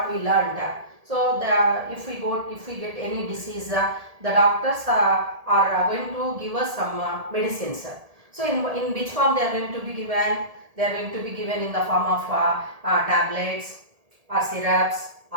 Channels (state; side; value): late; left; 1.7 ms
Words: we learned, so if we get any disease, the doctors are going to give us some medicines. So, in which form they are going to be given? They are going to be given in the form of tablets or syrups